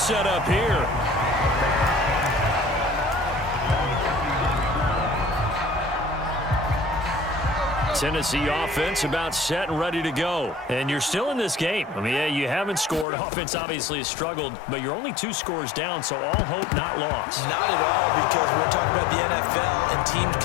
up here. Tennessee offense about set and ready to go. And you're still in this game. I mean, yeah, you haven't scored. Offense obviously has struggled, but you're only 2 scores down, so all hope not lost. Not at all, because we're talking about the NFL, and teams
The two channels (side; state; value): right; drops out; at 13.1 s